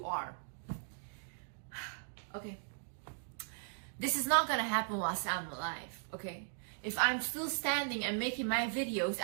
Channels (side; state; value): left; silent; digital silence